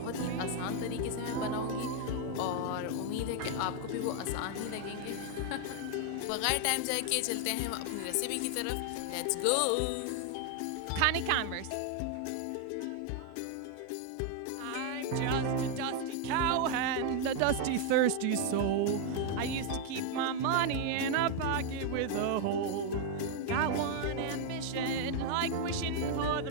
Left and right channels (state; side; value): different; both; correlation 0.00